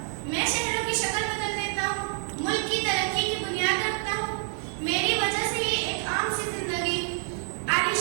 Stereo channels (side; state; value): left; silent; digital silence